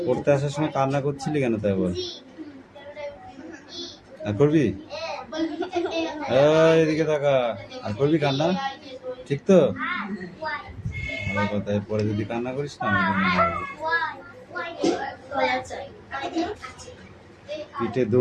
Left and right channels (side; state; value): both; identical; correlation 1.00